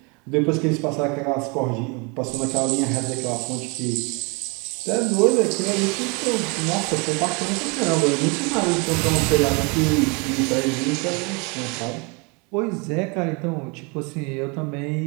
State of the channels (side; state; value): left; quieter; 31.0 dB